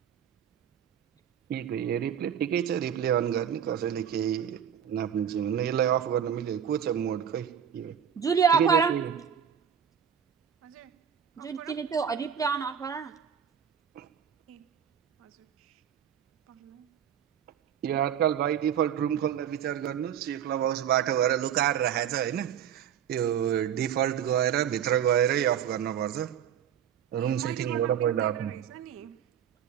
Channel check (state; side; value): quieter; left; 8.8 dB